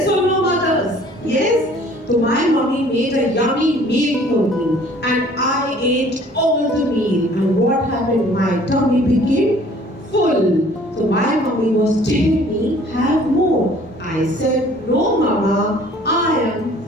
or no, mothers? Yes? So my mommy made a yummy meal for me and I ate all the meal. And what happened? My tummy became full. So my mommy was telling me, have more. I said, no mama, I am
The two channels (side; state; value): both; normal; correlation 0.54